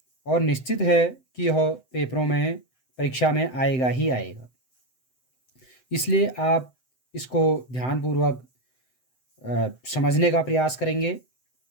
और निश्चित है कि यह पेपरों में परीक्षा में आएगा ही आएगा। इसलिए आप इसको ध्यानपूर्वक समझने का प्रयास करेंगे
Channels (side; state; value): right; late; 7.8 ms